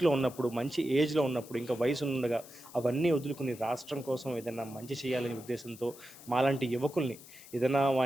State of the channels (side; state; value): left; noise; hiss, 19 dB below the sound